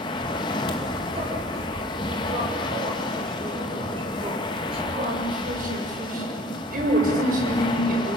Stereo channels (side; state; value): both; normal; correlation 0.48